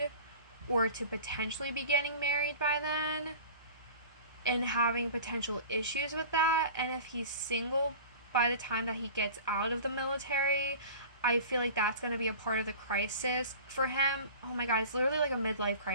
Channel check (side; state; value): both; inverted; correlation -0.39